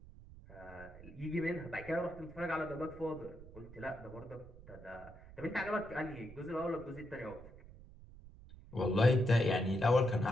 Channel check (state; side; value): noise; right; rumble, 18 dB below the sound